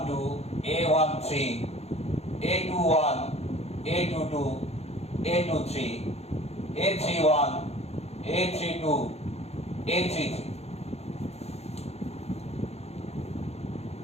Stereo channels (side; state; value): right; late; 0.31 ms